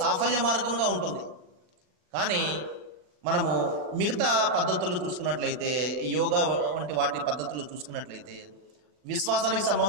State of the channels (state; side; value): late; left; 40 ms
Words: మార్గంగా ఉంటుంది. కానీ మనము మిగతా పద్ధతులు చూసుకున్నట్లయితే, యోగా వంటి వాటి పద్ధతులు చూసుకున్నట్లయితే విశ్వాసానికి